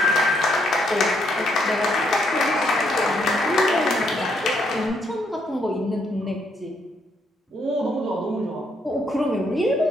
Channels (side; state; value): both; normal; correlation 0.73